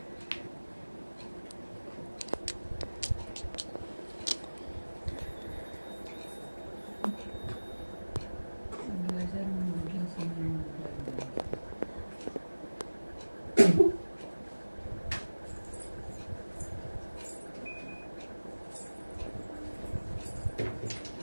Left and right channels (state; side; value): inverted; both; correlation -1.00